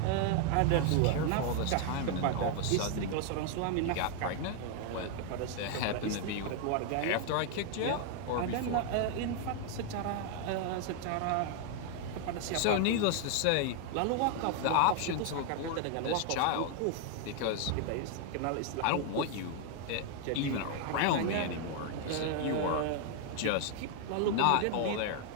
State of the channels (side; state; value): both; different; correlation 0.00